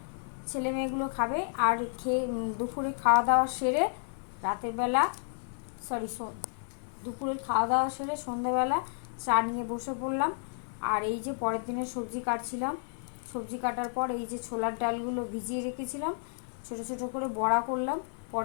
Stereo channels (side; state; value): right; silent; digital silence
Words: ছেলে মেয়েগুলো খাবে, আর খেয়ে দুপুরে খাওয়া দাওয়া সেরে রাতের বেলা সরি দুপুরের খাওয়া দাওয়া সেরে সন্ধ্যেবেলা চা নিয়ে বসে পড়লাম। আর এই যে পরের দিনের সবজি কাটছিলাম, সবজি কাটার পর এই যে ছোলার ডালগুলো ভিজিয়ে রেখেছিলাম, ছোট ছোট করে বড়া করলাম,